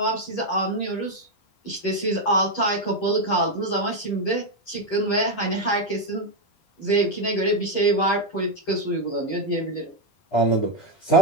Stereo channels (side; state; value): right; late; 10 ms